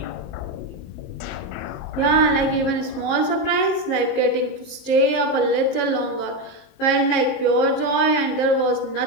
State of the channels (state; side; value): late; right; 19 ms